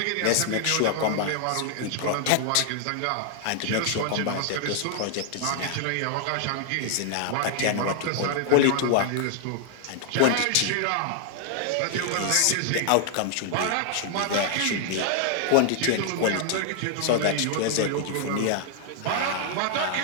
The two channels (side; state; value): both; different; correlation 0.00